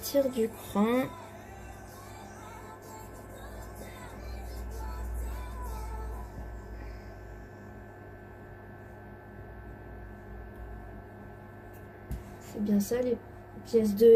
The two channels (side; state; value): both; identical; correlation 1.00